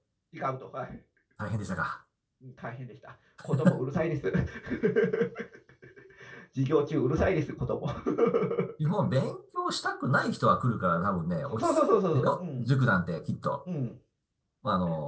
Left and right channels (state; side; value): identical; both; correlation 1.00